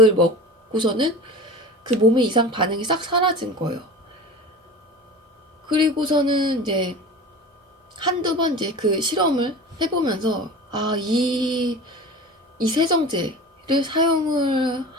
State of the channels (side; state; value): both; normal; correlation 0.34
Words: 먹고서는 그 몸의 이상 반응이 싹 사라진 거예요. 그리고서는 이제 한두 번 이제 그 실험을 해보면서 이 세정제를 사용을